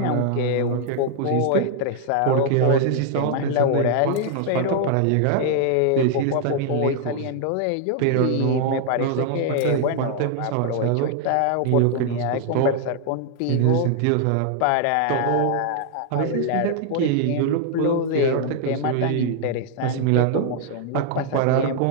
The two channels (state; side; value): different; both; correlation 0.00